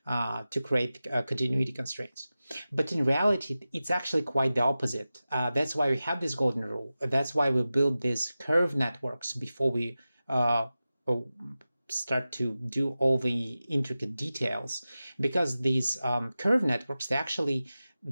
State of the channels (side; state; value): both; inverted; correlation -0.95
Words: create continuity constraints. But in reality, it's actually quite the opposite. That's why we have this golden rule. That's why we build these curve networks before we start to do all the intricate details, because these curve networks, they're actually